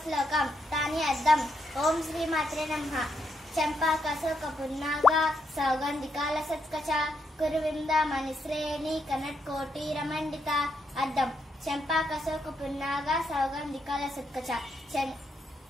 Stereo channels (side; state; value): both; normal; correlation 0.79